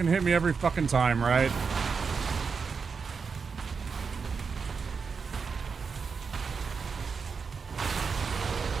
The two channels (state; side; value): quieter; left; 5.4 dB